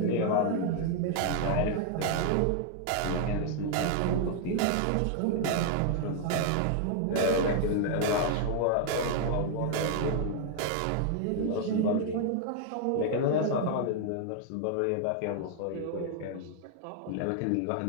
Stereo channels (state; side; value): different; both; correlation 0.00